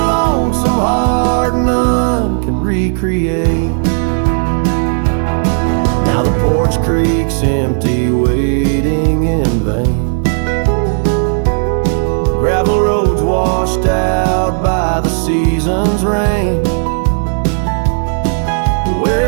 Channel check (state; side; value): silent; left; digital silence